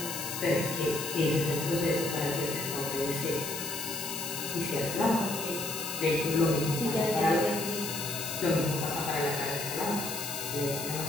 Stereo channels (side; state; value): left; noise; hiss, 6 dB below the sound